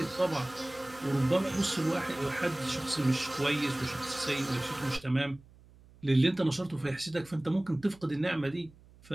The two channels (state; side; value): noise; right; hum, 25 dB below the sound